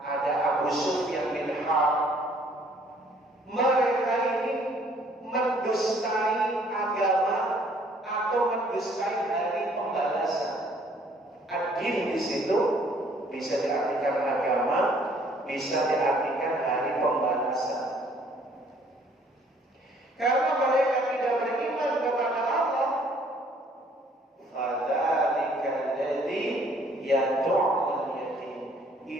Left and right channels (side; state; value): both; normal; correlation 0.60